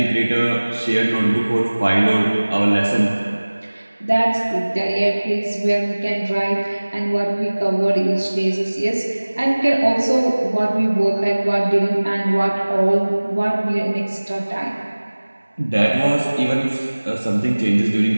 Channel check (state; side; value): inverted; both; correlation -1.00